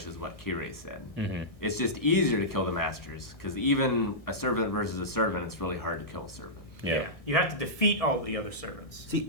is what Kirei said. It's just easier to kill the masters, because even a servant versus a servant, it's really hard to kill a servant. Yeah. You have to defeat all the other servants.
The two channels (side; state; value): right; late; 1.6 ms